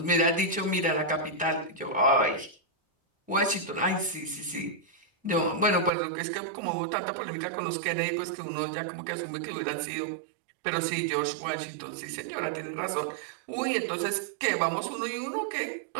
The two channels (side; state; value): left; drops out; at 5.9 s